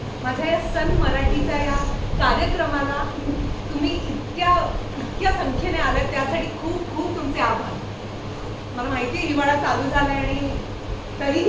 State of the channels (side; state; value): both; identical; correlation 1.00